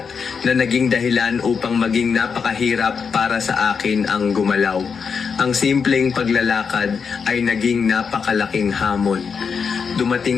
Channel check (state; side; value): quieter; right; 5.9 dB